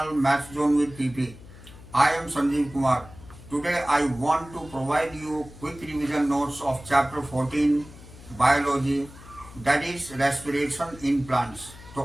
Math Zone with TP. I am Sanjeev Kumar. Today I want to provide you quick revision notes of chapter 14 Biology, that is respiration in plants.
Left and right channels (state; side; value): noise; left; hum, 19 dB below the sound